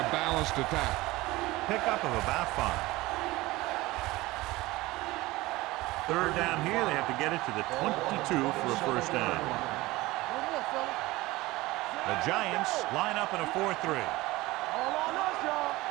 balanced attack. Pickup of about 5. Third down here, they have to get it to the 22 for a first down. The Giants line up in a 4-3. All on us, y'all.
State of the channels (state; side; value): quieter; left; 19.7 dB